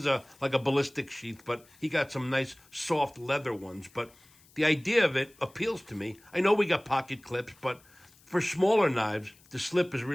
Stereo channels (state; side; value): noise; left; hiss, 28 dB below the sound